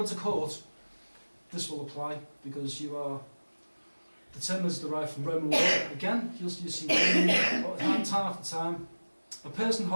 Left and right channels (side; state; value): both; inverted; correlation -1.00